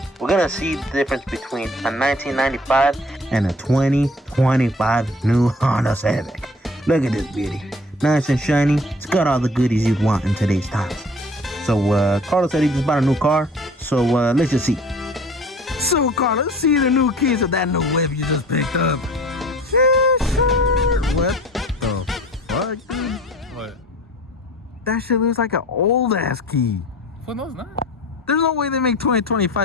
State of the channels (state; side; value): normal; both; correlation 0.48